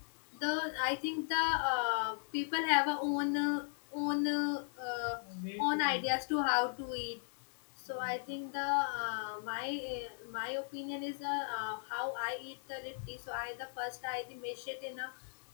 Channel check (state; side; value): silent; right; digital silence